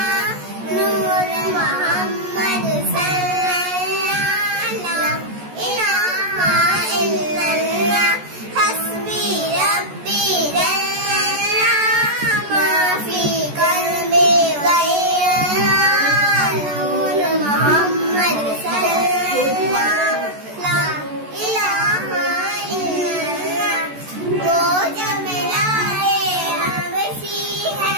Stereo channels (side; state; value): left; late; 14 ms